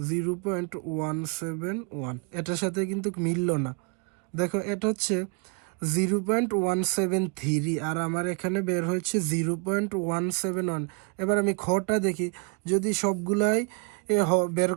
0.171, এটার সাথে কিন্তু মিলল না। দেখো এটা হচ্ছে 0.173 আর আমার এখানে বের হয়েছে 0.171। এবার আমি খটা দেখি, যদি সবগুলাই বের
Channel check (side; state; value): left; quieter; 33.4 dB